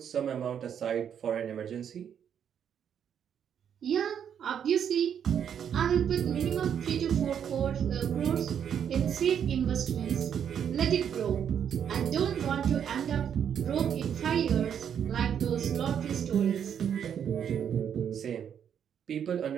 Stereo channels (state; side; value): quieter; left; 8.5 dB